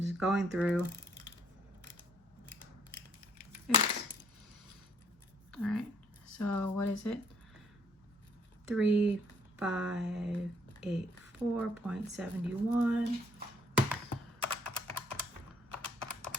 just going through. Oops. All right, so what is it? 3584.71.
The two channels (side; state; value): both; normal; correlation 0.64